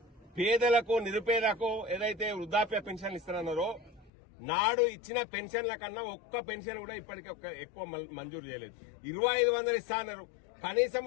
పేదలకు నిరుపేదలకు ఏదైతే వృద్ధాప్య పెన్షన్లు ఇస్తారన్నారో నాడు ఇచ్చిన పెన్షన్ల కన్నా ఒక్క పెన్షన్ కూడా ఇప్పటికీ ఎక్కువ మంజూరు చేయలేదు. 2500 ఇస్తా అన్నారు. కనీసం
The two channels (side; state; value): right; drops out; at 4.1 s